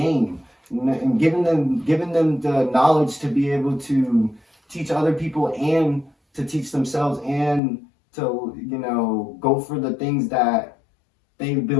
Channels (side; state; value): right; drops out; at 7.6 s